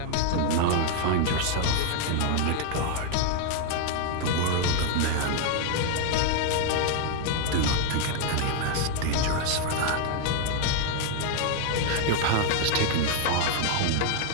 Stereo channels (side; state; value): both; different; correlation 0.00